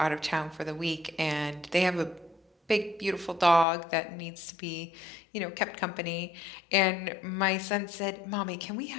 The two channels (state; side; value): drops out; right; at 3.7 s